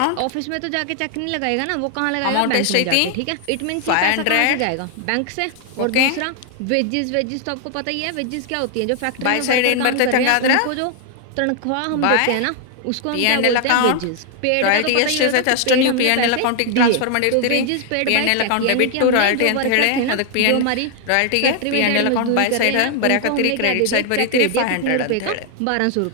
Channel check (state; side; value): different; both; correlation 0.00